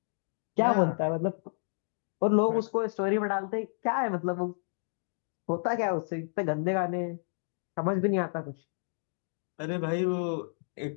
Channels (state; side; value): silent; right; digital silence